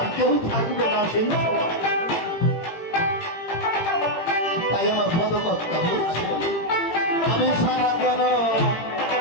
কেউ থাকবে না সেই সময়। তাই আমার পদকর্তা বলছে আমি সারা কেন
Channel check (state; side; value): late; right; 18 ms